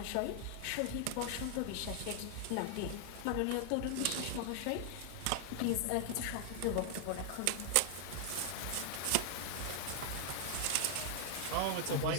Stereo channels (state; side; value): different; both; correlation 0.00